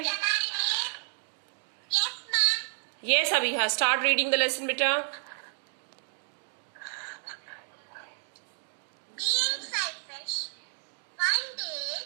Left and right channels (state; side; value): silent; left; 57 dB below the other